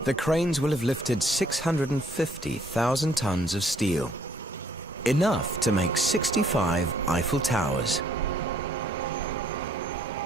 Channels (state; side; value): normal; both; correlation 0.64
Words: the cranes will have lifted 650,000 tons of steel, enough to make 65 Eiffel Towers.